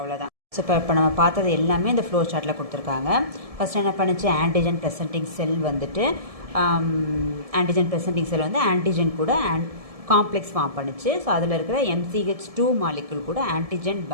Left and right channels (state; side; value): late; left; 1.7 ms